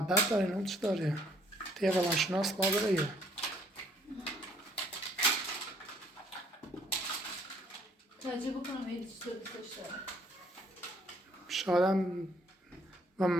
داره اون چی داره طیب روانشناس با داره یا تجربه کنم ایدی چی تو دوستش داره. شاید هم و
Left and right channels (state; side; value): normal; both; correlation 0.63